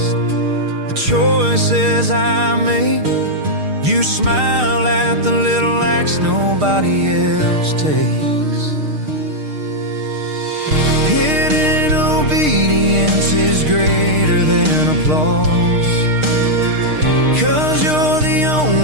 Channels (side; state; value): left; late; 6.5 ms